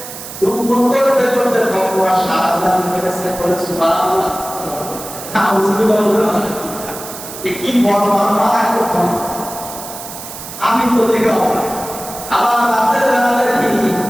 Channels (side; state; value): right; noise; hiss, 11 dB below the sound